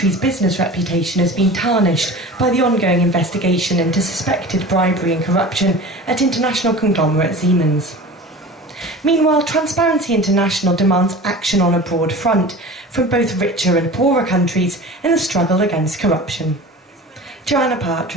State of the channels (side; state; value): both; normal; correlation 0.36